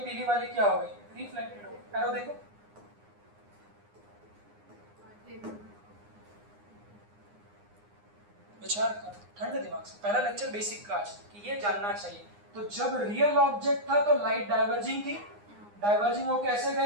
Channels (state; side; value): late; left; 9.7 ms